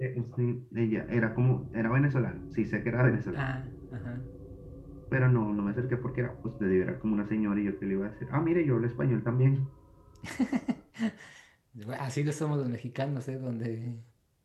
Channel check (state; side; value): identical; both; correlation 1.00